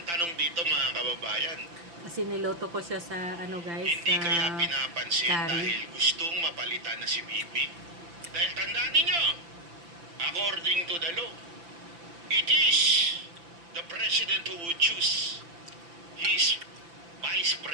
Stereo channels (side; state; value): left; late; 5.9 ms